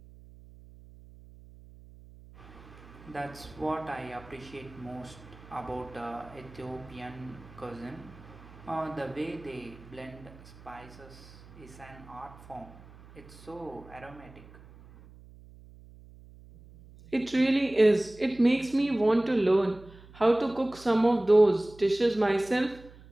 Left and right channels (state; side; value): noise; right; hum, 21 dB below the sound